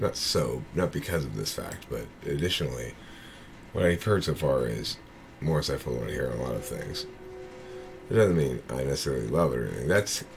not because of this fact, but additionally, what I've heard so far is more insightful than I hear a lot of things. It doesn't mean I necessarily love it or anything. That's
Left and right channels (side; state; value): both; identical; correlation 1.00